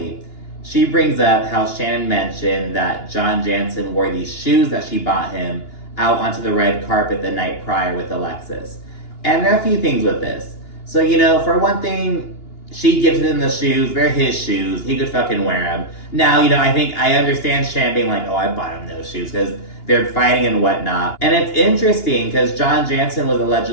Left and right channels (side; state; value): right; late; 2.9 ms